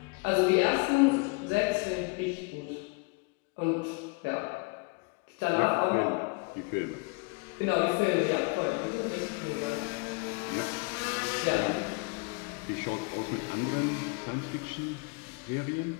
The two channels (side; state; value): right; quieter; 29.6 dB